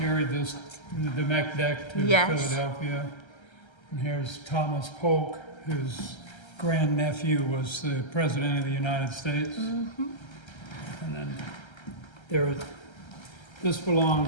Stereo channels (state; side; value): late; right; 1.3 ms